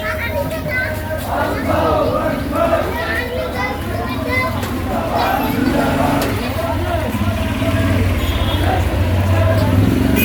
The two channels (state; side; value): identical; both; correlation 1.00